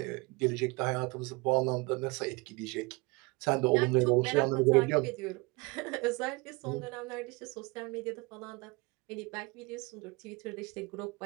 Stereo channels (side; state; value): left; quieter; 26.5 dB